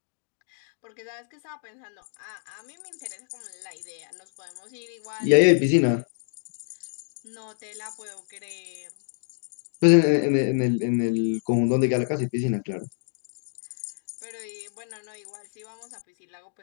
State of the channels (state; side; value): silent; right; digital silence